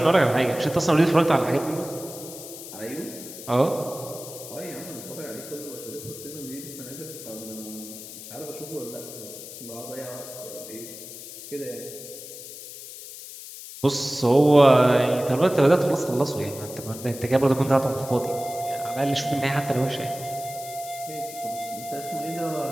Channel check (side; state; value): left; noise; hiss, 13 dB below the sound